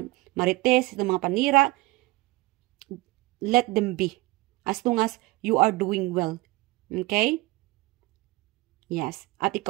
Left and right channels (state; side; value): quieter; left; 21.3 dB